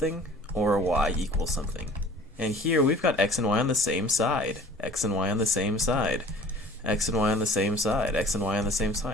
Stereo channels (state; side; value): normal; both; correlation 0.47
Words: or a y equals something. And here we've got x and y on the same side, x and y on the same side, x and y on the same side, x and y on the same